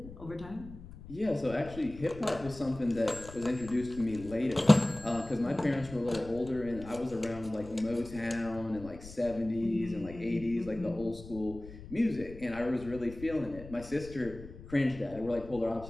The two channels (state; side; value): noise; left; rumble, 15 dB below the sound